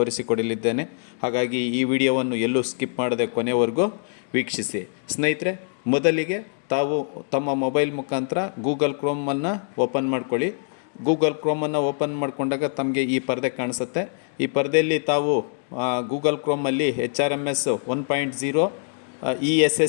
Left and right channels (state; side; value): silent; right; digital silence